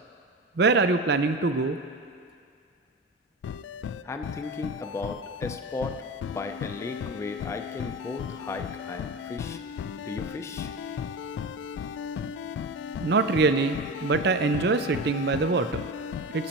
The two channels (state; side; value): normal; both; correlation 0.26